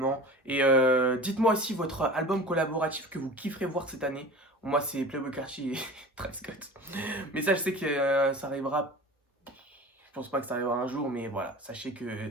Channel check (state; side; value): normal; both; correlation 0.37